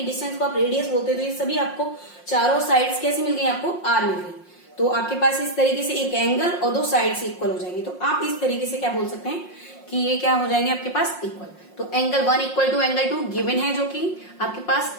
डिस्टेंस को आप रेडियस बोलते हैं, तो ये सभी आपको चारों साइड्स कैसे मिल गई, आपको आर मिल गई। तो आपके पास इस तरीके से एक एंगल और दो साइड से इक्वल हो जाएंगे, तो आप इस तरीके से क्या बोल सकते हैं कि ये क्या हो जाएंगे आपके पास, इक्वल। तो angle 1 equal to angle 2 given है जो कि आपके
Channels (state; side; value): late; right; 5.6 ms